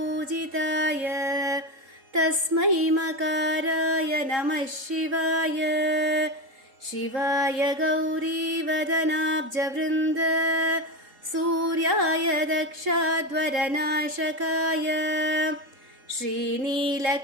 तस्मै मकाराय नमः शिवाय शिवाय गौरीवदनाब्जवृन्द सूर्याय दक्षाध्वरनाशकाय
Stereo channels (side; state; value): left; late; 3.8 ms